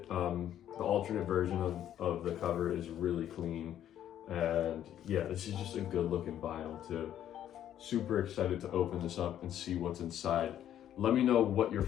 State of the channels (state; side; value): quieter; right; 10.9 dB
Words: The alternate version of the cover is really clean. And yeah, this is just a good looking vinyl too. Super excited to open this up and see what's inside. Let me know what your